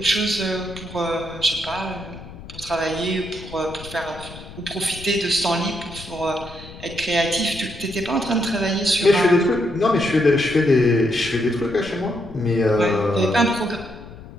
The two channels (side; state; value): left; noise; rumble, 16 dB below the sound